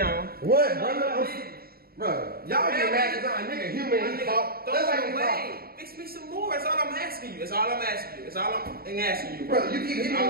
What, No, brother? Bro, y'all get mad because I'm a nigga human My and nigga, talk. throw That's like it you away. talk. Fix me some more. That's all I'm asking you. That's all I'm asking you. That's all I'm asking you, Brother, you keep hitting me All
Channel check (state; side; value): late; left; 0.44 ms